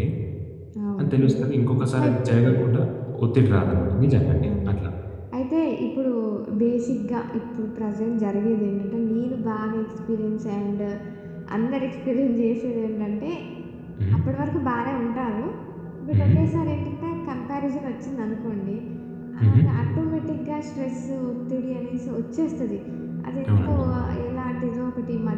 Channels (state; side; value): identical; both; correlation 1.00